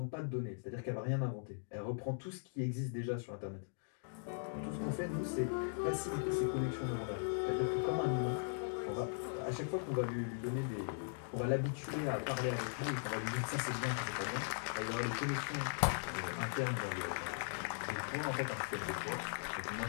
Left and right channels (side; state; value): right; silent; digital silence